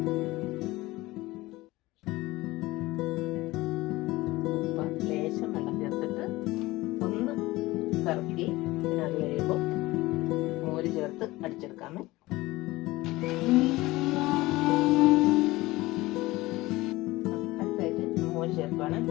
ലേശം വെള്ളം ചേർത്തിട്ട് ഒന്ന് കറക്കി പിന്നെ അത് കഴിയുമ്പോൾ മോര് ചേർത്ത് അടിച്ചെടുക്കാമേ. അടുത്തായിട്ട് മോര് ചേർക്കുകയാണ്.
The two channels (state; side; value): quieter; right; 19.5 dB